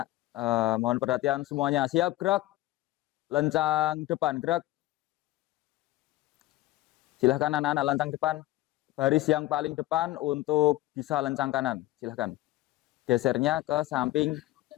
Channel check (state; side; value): quieter; right; 16.9 dB